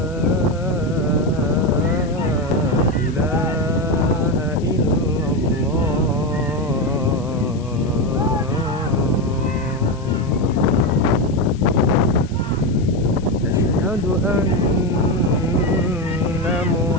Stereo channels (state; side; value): noise; left; hiss, 24 dB below the sound